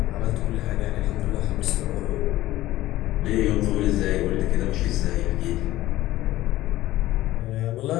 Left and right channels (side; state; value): right; quieter; 15.8 dB